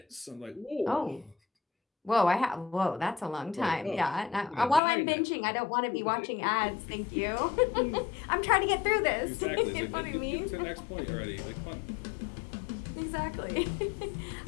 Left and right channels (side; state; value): right; drops out; at 4.8 s